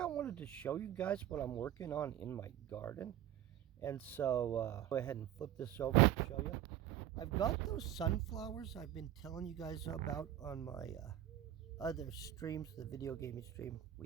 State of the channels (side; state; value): left; quieter; 11.8 dB